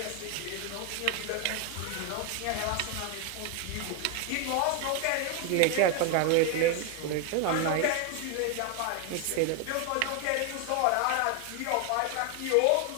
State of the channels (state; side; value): different; both; correlation 0.01